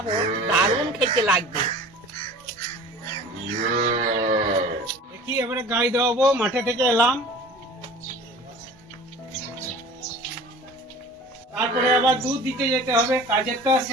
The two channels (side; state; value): both; normal; correlation 0.42